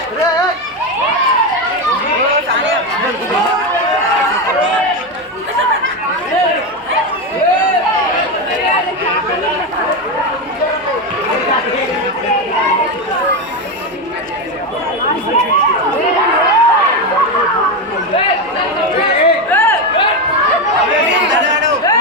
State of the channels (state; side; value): normal; both; correlation 0.12